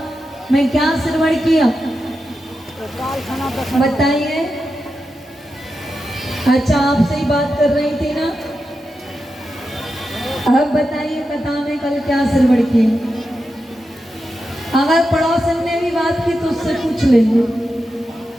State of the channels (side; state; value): both; normal; correlation 0.89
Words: में क्या श्रवण किया बताइए। अच्छा, आपसे ही बात कर रही थी ना, अब बताइए कथा में कल क्या श्रवण किया। अगर पड़ोसन ने भी बात की तो उससे पूछ लेंगे।